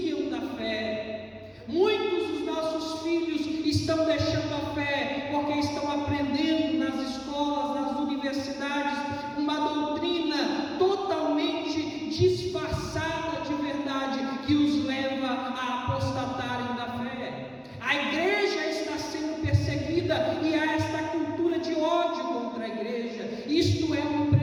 da fé. Muitos dos nossos filhos estão deixando a fé porque estão aprendendo nas escolas, nas universidades, uma doutrina totalmente disfarçada de verdade que os leva a apostatarem da fé. A igreja está sendo perseguida e há esta cultura de ódio contra a igreja. Isto é um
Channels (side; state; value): both; identical; correlation 1.00